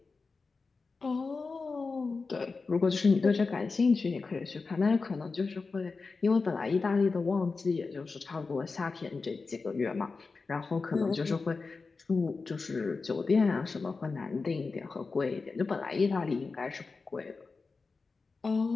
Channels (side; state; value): right; quieter; 4.3 dB